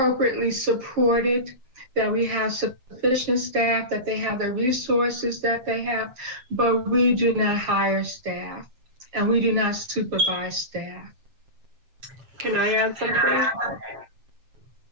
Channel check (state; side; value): late; left; 7.5 ms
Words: supported, that we have sufficient staff, that they have the resources that they have, but we do not hire staff, and we do not supervise staff. Can I add something?